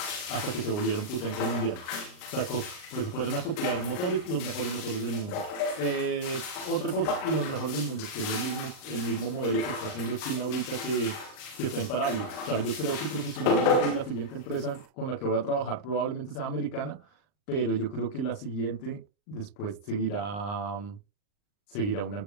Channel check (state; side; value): late; right; 39 ms